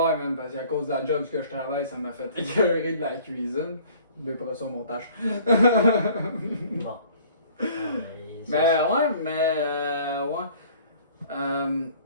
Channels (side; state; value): both; inverted; correlation -0.53